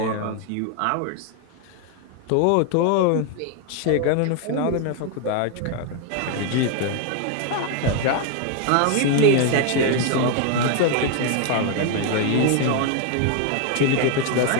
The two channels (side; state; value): both; different; correlation 0.00